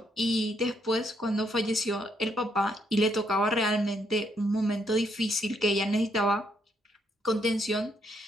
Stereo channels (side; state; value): both; normal; correlation 0.74